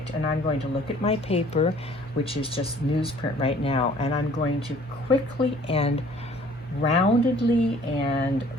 and I'm going to look at my paper, which is just newsprint right now, and I'm going to quickly and roundedly and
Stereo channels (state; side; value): normal; both; correlation 0.54